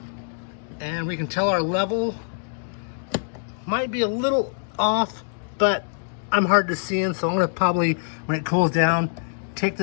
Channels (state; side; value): silent; right; digital silence